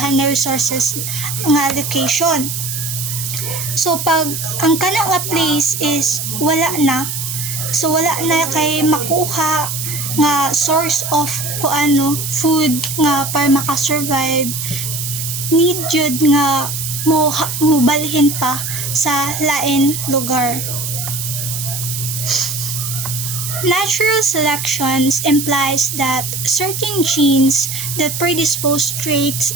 na resources nga location. So pag ang kana nga place is wala na kay makuha nga source of food nga para makasurvive, need jud nga mobalhin pa sa lain lugar. Natural selection implies that certain genes that predispose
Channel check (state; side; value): noise; right; hiss, 4 dB below the sound